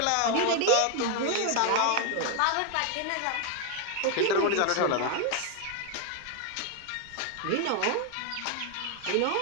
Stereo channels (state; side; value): different; both; correlation 0.01